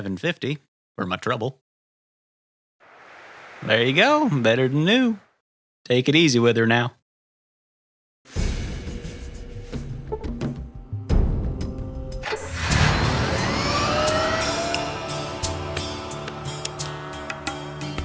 for my trouble. There you go, better than new. Take it easy with her now.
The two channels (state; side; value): identical; both; correlation 1.00